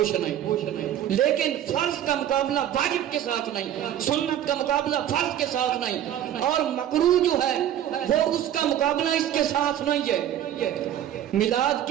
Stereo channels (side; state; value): left; quieter; 11.1 dB